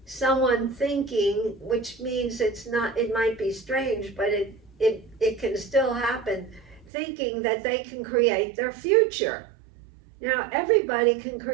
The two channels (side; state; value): left; drops out; at 6.9 s